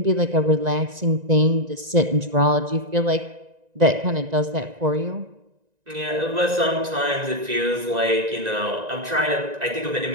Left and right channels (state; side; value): late; left; 1.9 ms